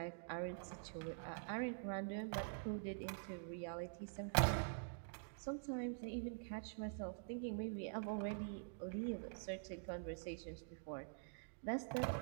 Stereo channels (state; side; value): silent; left; digital silence